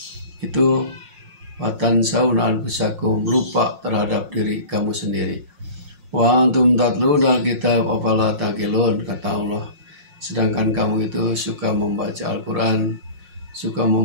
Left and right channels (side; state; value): left; late; 5.6 ms